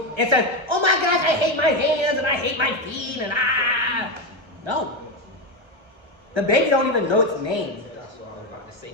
and says, oh my gosh, I hate my hands and I hate my feet and ah. No. The baby don't even know its name. That's what I was about to say.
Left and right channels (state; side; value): late; left; 1.3 ms